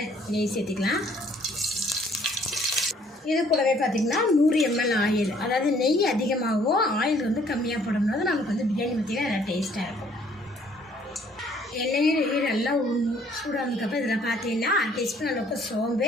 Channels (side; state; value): both; normal; correlation 0.61